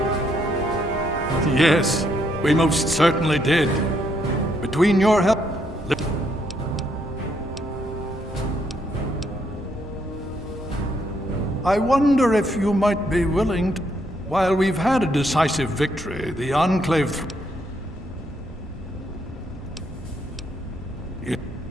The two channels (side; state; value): both; normal; correlation 0.74